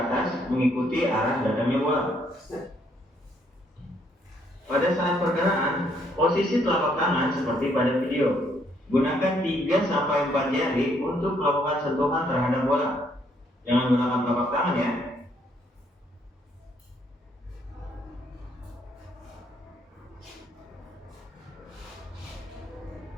mengikuti arah datangnya bola. Pada saat pergerakan, posisi telapak tangan seperti pada video. Gunakan 3-4 jari untuk melakukan sentuhan terhadap bola. Jangan gunakan telapak tangan ya.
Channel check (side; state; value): both; normal; correlation 0.70